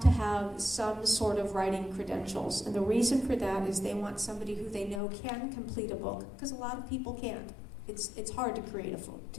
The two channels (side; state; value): right; drops out; at 5.0 s